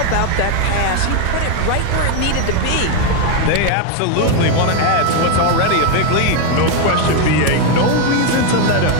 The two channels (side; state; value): both; different; correlation 0.01